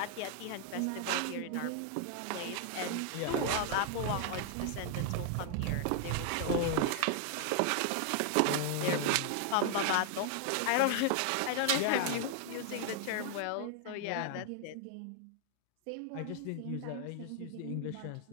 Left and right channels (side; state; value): both; different; correlation 0.00